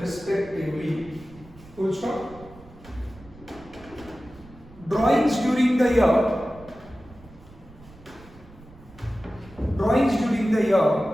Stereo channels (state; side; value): noise; right; rumble, 22 dB below the sound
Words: Full stop. Drawings during the year